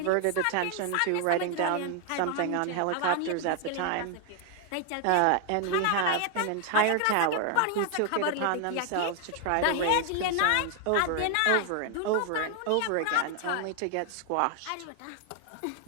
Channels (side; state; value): both; different; correlation 0.01